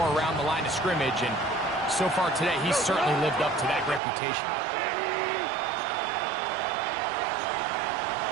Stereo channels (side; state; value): left; drops out; at 4.0 s